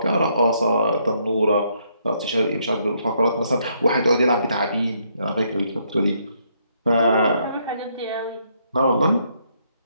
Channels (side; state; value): both; inverted; correlation -0.72